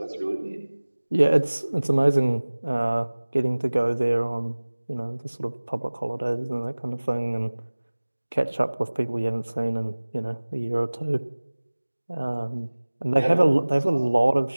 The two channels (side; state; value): both; inverted; correlation -1.00